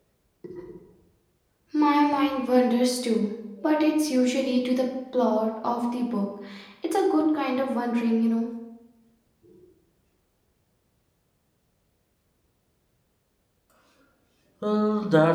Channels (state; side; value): identical; both; correlation 1.00